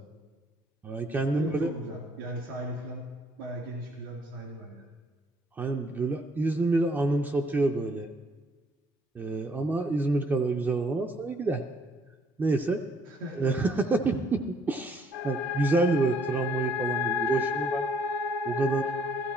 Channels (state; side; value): normal; both; correlation 0.64